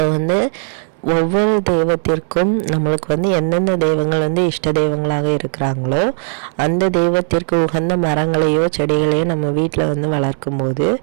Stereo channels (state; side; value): silent; left; digital silence